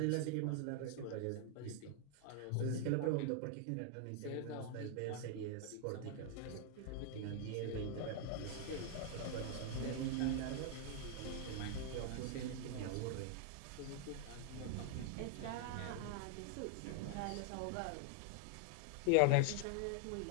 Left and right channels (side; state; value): both; different; correlation 0.00